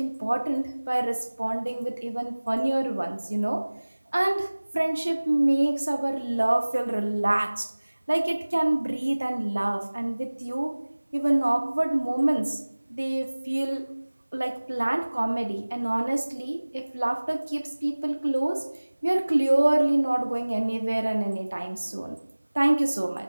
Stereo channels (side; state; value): both; inverted; correlation -1.00